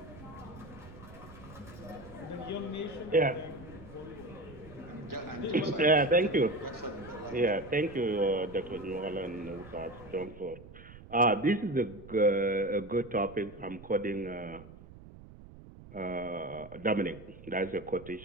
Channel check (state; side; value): noise; right; rumble, 18 dB below the sound